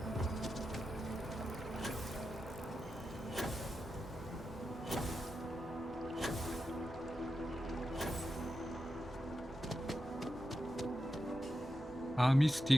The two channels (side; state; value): both; normal; correlation 0.89